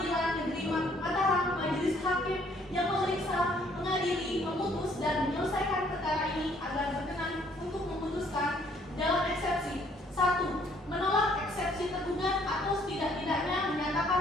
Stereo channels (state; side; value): normal; both; correlation 0.63